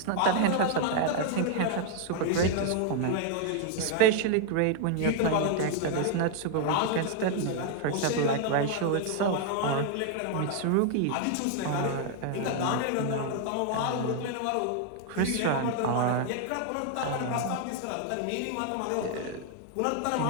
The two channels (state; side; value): different; both; correlation 0.00